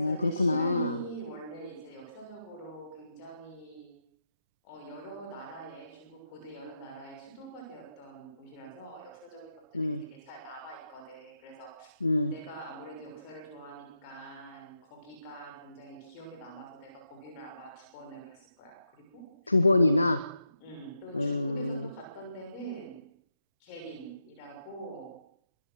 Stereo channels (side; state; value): both; inverted; correlation -0.85